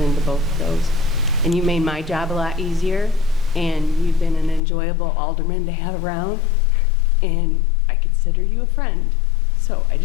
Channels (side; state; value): right; drops out; at 4.6 s